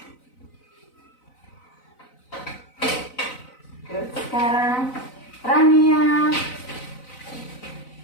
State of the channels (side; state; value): right; late; 4.0 ms